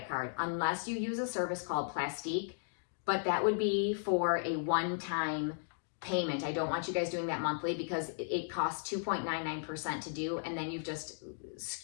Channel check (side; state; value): right; silent; digital silence